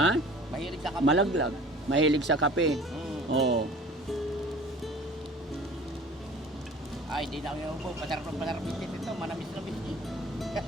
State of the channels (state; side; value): normal; both; correlation 0.45